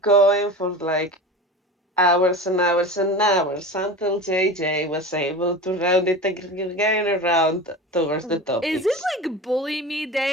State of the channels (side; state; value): both; normal; correlation 0.31